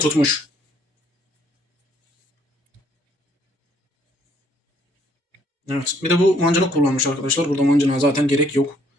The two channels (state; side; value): normal; both; correlation 0.66